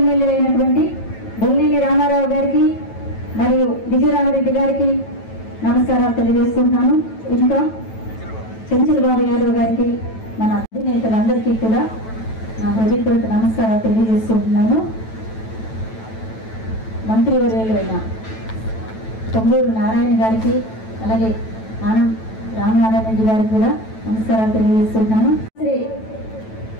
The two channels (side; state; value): right; late; 9.1 ms